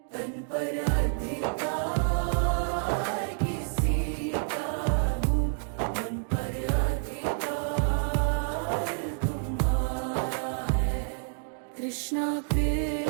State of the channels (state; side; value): silent; left; 59 dB below the other